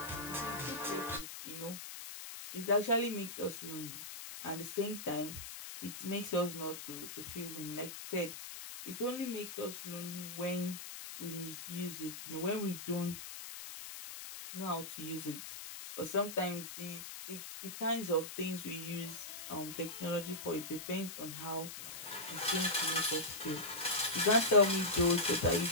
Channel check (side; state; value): left; noise; hiss, 9 dB below the sound